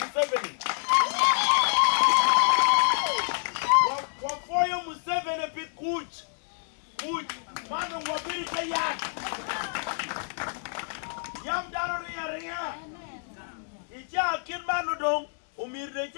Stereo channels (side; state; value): right; silent; 59 dB below the other